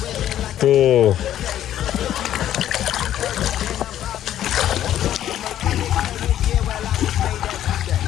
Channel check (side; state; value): right; quieter; 11.7 dB